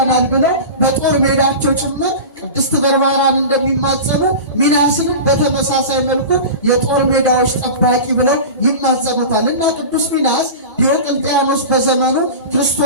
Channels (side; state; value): both; inverted; correlation -0.31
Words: ብለው በጦር ሜዳቸው ጭምር ቅድስት በርባራን እንደሚማጸኑ ሚናስንም በተመሳሳይ መልኩ የጦር ሜዳዎች ጠባቂ ብለው ይማጸኑታል። እና ቅዱስ ሚናስ ዲዮቅልጥያኖስ በዘመኑ